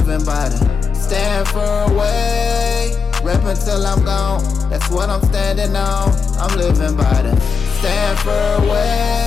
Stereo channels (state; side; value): quieter; right; 5.4 dB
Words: by the stand for a way, rep until I'm gone, that's what I'm standing on. I'm living by the stand for a